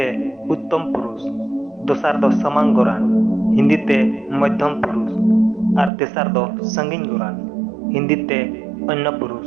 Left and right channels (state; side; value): drops out; left; at 5.9 s